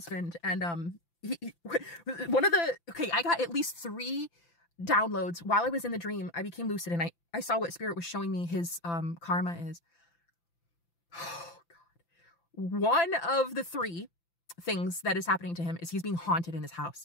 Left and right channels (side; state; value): right; late; 5.9 ms